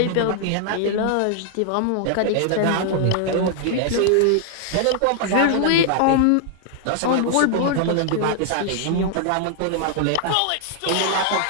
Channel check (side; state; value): both; different; correlation 0.00